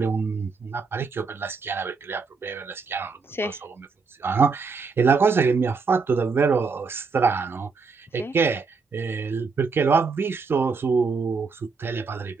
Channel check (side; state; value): left; quieter; 4.8 dB